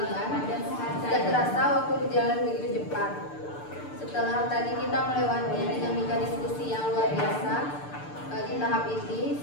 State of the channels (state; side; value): late; right; 6.8 ms